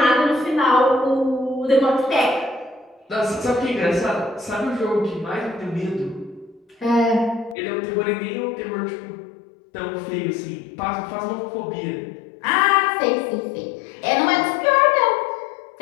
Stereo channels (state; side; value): drops out; right; at 7.6 s